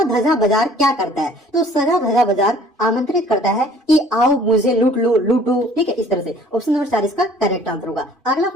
धजा बाजार क्या करता है? तो सजा धजा बाजार आमंत्रित करता है कि आओ मुझे लूट लो, लूटो। ठीक है, इस तरह से। ऑप्शन नंबर 4 इसका करेक्ट आंसर होगा। अगला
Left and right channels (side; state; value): both; normal; correlation 0.53